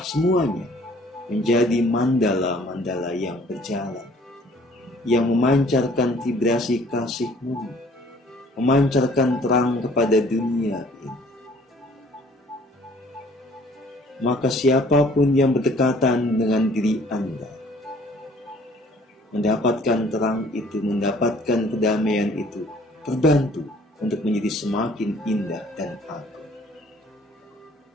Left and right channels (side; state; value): both; normal; correlation 0.56